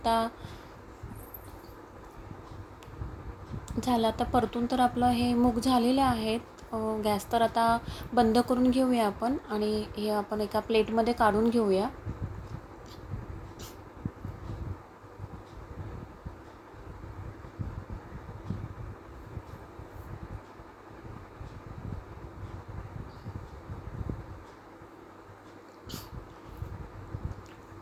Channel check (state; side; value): identical; both; correlation 1.00